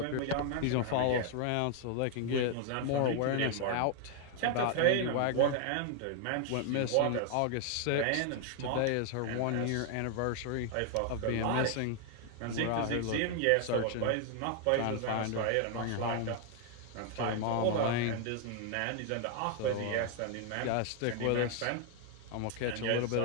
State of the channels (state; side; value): different; both; correlation 0.00